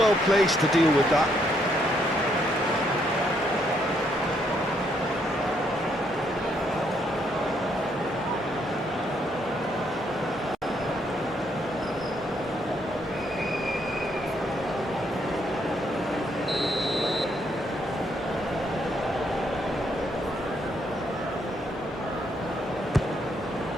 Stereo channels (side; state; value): both; normal; correlation 0.73